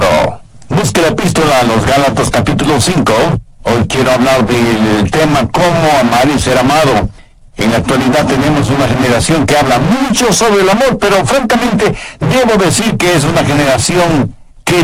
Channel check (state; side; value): identical; both; correlation 1.00